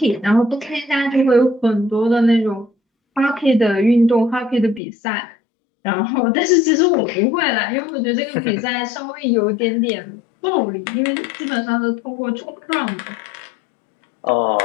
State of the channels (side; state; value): right; drops out; at 4.8 s